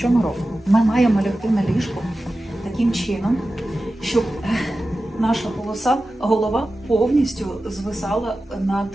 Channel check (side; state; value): both; normal; correlation 0.94